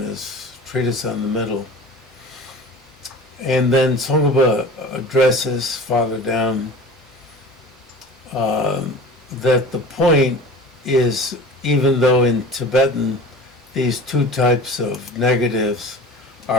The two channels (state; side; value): normal; both; correlation 0.39